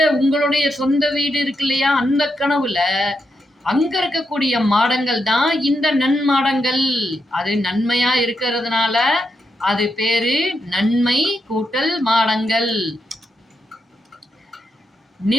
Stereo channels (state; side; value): normal; both; correlation 0.83